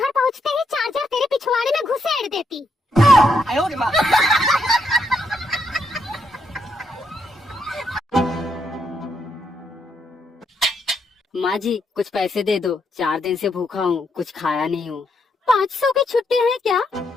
पहुँचते ही चार्जर तेरे पिछवाड़े में घुसेड़ देती। माँ जी कुछ पैसे दे दो, 4 दिन से भूखा हूँ, कुछ खाया नहीं हूँ। 500 की छुट्टी है क्या?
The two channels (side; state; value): both; normal; correlation 0.77